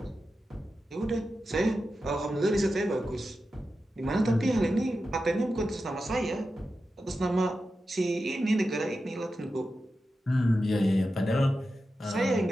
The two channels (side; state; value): both; normal; correlation 0.91